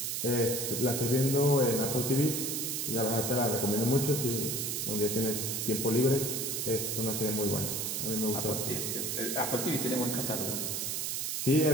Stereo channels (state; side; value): noise; right; hiss, 1 dB below the sound